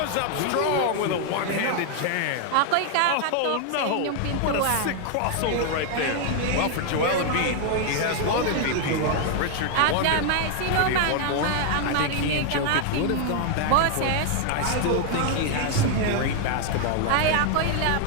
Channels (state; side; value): different; both; correlation 0.00